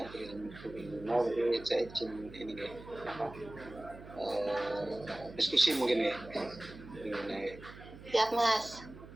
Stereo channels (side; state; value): right; noise; hum, 16 dB below the sound